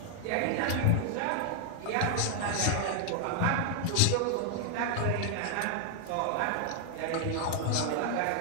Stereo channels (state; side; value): different; both; correlation 0.00